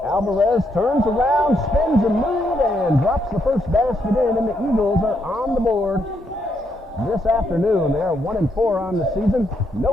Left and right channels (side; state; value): both; normal; correlation 0.77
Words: Alvarez turns around, spins a move, and drops the first basket in, and the Eagles are on the board this afternoon. They are 1-4 on the season.